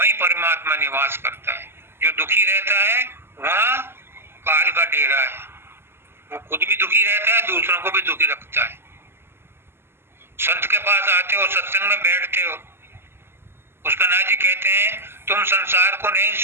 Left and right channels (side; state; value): left; late; 0.12 ms